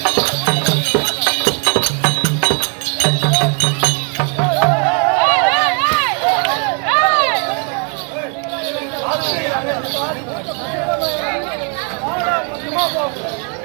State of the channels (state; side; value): quieter; left; 39.0 dB